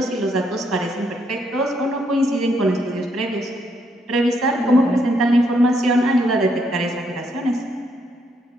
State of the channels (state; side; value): normal; both; correlation 0.74